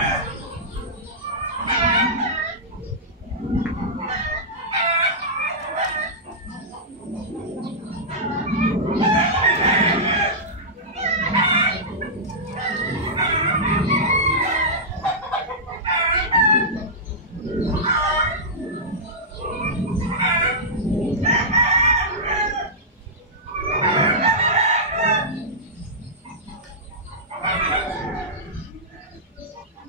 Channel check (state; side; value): normal; both; correlation -0.12